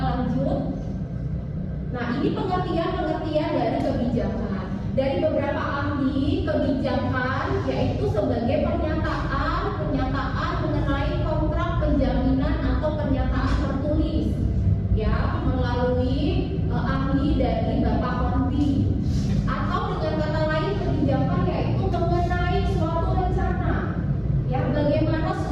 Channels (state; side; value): identical; both; correlation 1.00